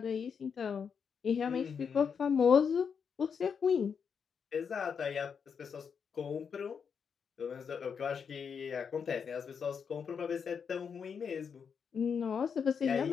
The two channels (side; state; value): right; quieter; 6.6 dB